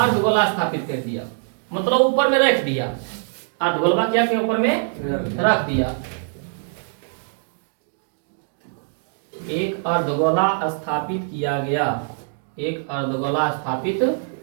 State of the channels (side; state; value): left; silent; digital silence